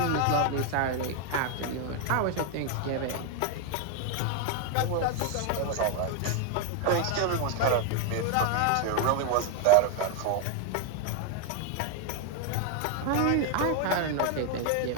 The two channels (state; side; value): different; both; correlation 0.01